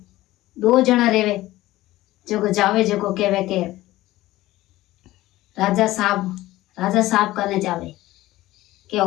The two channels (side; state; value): right; quieter; 16.8 dB